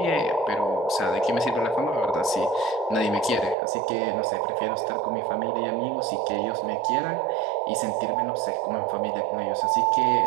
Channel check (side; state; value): left; drops out; at 3.6 s